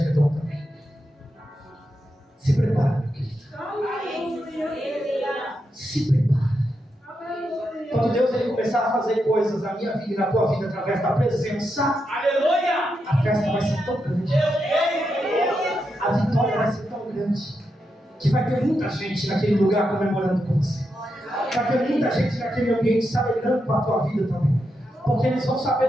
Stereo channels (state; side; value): normal; both; correlation 0.85